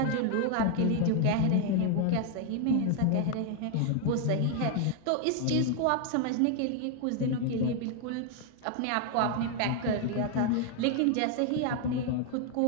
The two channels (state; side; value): different; both; correlation 0.00